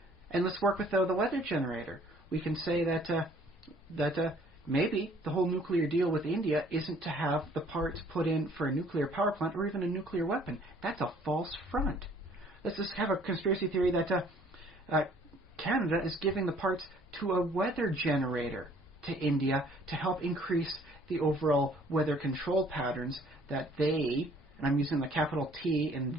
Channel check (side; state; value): both; normal; correlation 0.58